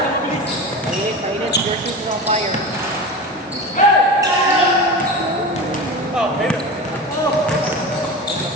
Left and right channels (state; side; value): normal; both; correlation 0.28